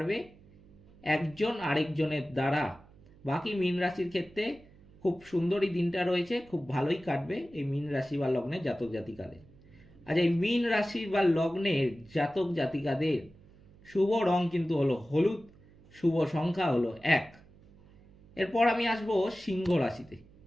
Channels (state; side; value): noise; right; hum, 25 dB below the sound